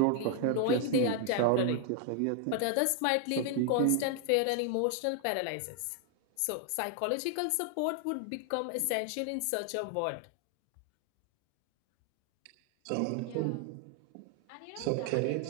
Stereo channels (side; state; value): both; different; correlation 0.00